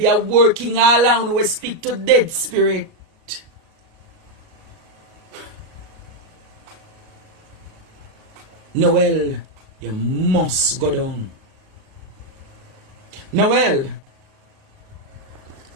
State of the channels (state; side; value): late; left; 38 ms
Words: are working all around we speak to dead spirit. Noel, you must go down. Noel.